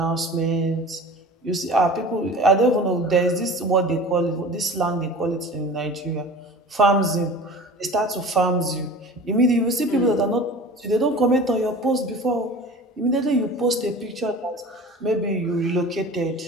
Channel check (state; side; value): normal; both; correlation 0.38